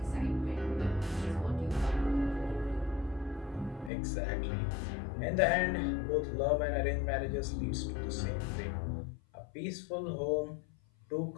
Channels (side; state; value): right; drops out; at 3.9 s